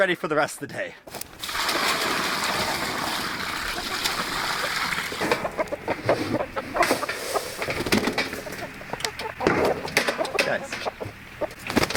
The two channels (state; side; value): identical; both; correlation 1.00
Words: for the rest of the day. Guys.